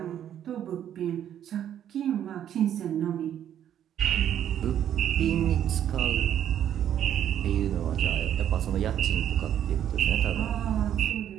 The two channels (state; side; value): quieter; left; 10.2 dB